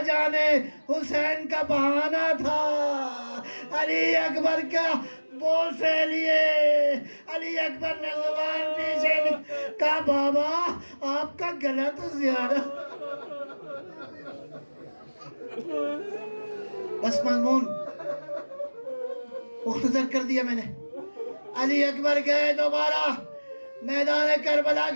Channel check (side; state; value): both; inverted; correlation -1.00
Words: جانے حسین کا بہانہ تھا، علی اکبر کا بول سے لیے، علی اکبر نے زبان پیچھے کہا بابا آپ کا گلا تو زیادہ۔ بس مضمون مختصر کر دیا میں نے۔ علی اکبر گئے دوبارہ میدان کربلا